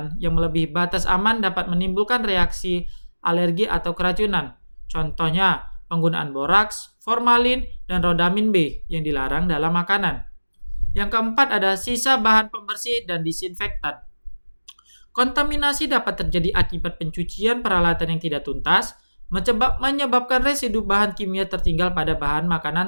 yang melebihi batas aman dapat menimbulkan reaksi alergi atau keracunan. Contohnya, penggunaan boraks, formalin, dan rodamin B yang dilarang dalam makanan. Yang keempat ada sisa bahan pembersih dan disinfektan. Kontaminasi dapat terjadi akibat pencucian peralatan yang tidak tuntas, menyebabkan residu bahan kimia tertinggal pada bahan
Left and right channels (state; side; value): inverted; both; correlation -1.00